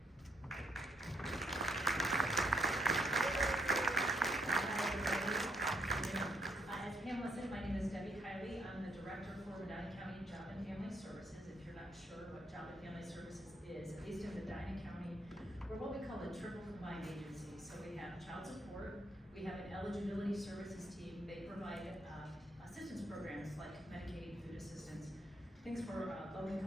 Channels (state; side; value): normal; both; correlation 0.74